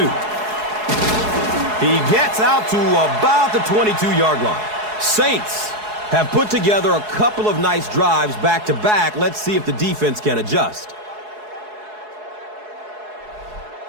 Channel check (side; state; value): left; late; 4.7 ms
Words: He gets out to about the 22-yard line. Saints have put together a couple of nice drives back-to-back. Let's see if the defense can adjust.